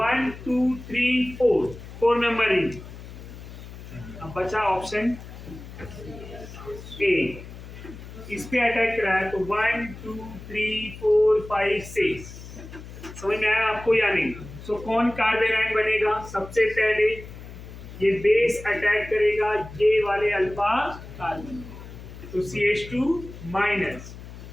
2 3 4 मेंबर रिंग, अब बचा ऑप्शन ए, इस पे अटैक करा है तो 1 2 3 4 5 6। समझ में आया आपको या नहीं? सो कौन कार्बन आयन बनेगा, सबसे पहले ये बेस अटैक करेगा ये वाले अल्फा कार्बन, तो CH2 minus,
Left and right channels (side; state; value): left; noise; hum, 14 dB below the sound